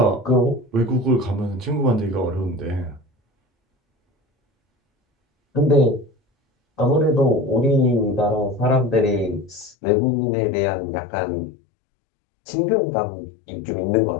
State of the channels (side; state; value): right; drops out; at 9.8 s